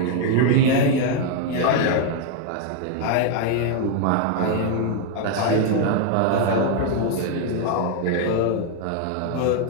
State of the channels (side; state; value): both; different; correlation 0.00